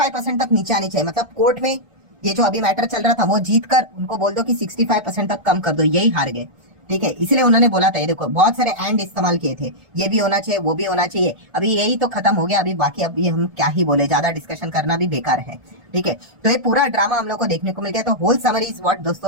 तक नीचे आनी चाहिए। मतलब कोर्ट में ये जो अभी मैटर चल रहा था वो जीत कर उनको बोल दो कि 65% तक कम कर दो, यही हार गए, ठीक है। इसलिए उन्होंने बोला था, ये देखो बहुत सारे एंड इस्तेमाल किए थे, ये भी होना चाहिए, वो भी होना चाहिए, अभी यही तो खत्म हो गया, अभी बाकी अब ये हम क्या ही बोले, ज्यादा डिस्कशन करना भी बेकार है, ठीक है। तो ये पूरा ड्रामा हम लोग को देखने को मिल गया। तो होल समरी इज व्हाट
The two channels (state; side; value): late; left; 1.4 ms